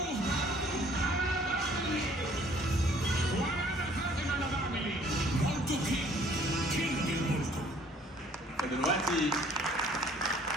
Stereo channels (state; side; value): normal; both; correlation 0.58